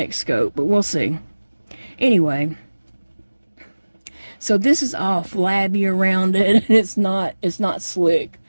scope, but we'll see. Anyway, so this is all flabby around it, and it's not slick.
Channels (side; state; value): both; inverted; correlation -1.00